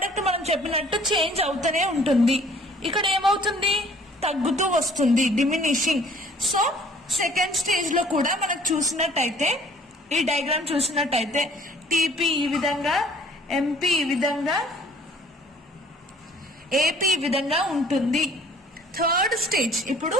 మనం చెప్పినట్టు చేంజ్ అవుతూనే ఉంటుంది. ఇక్కడ ఏమవుతుంది, తగ్గుతూ వస్తుంది, డిమినిషింగ్. సో సెకండ్ స్టేజ్ లో కూడా మనకు చూసినట్టయితే, ఈ డయాగ్రామ్ చూసినట్టయితే టీపీ ఈ విధంగా, ఎంపీ ఈ విధంగా, ఏపీ ఈ విధంగా ఉంటుంది. థర్డ్ స్టేజ్, ఇప్పుడు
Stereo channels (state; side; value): normal; both; correlation 0.55